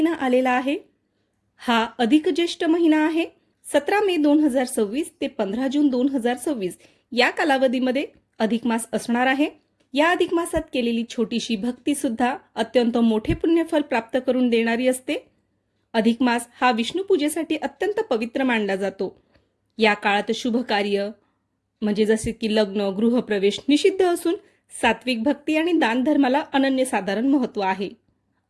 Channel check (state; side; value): identical; both; correlation 1.00